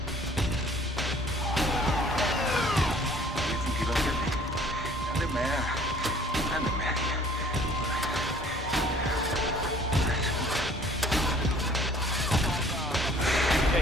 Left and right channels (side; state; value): both; normal; correlation 0.55